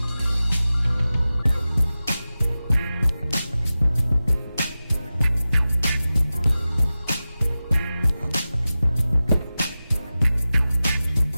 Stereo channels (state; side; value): inverted; both; correlation -0.95